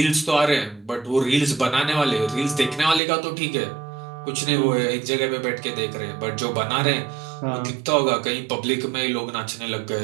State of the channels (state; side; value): drops out; left; at 3.0 s